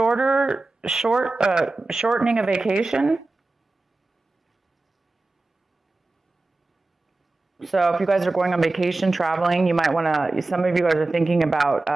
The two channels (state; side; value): quieter; left; 3.2 dB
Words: a vacation. So if you guys are going on vacation, traveling, you might want to, some of you guys are thinking about